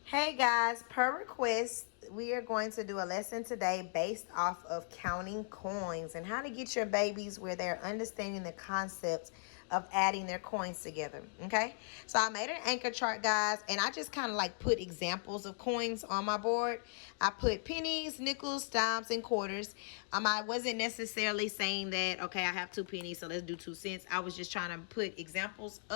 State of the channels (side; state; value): right; silent; digital silence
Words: Hey guys, per request, we are going to do a lesson today based off of counting coins and how to get your babies where they're understanding the concept of adding their coins together. Okay, so I made an anchor chart, guys, and I just kind of like put examples of coins on my board. I put pennies, nickels, dimes, and quarters. I wasn't necessarily saying that, okay, I have 2 pennies, so let's do 2 cents. I was just trying to put examples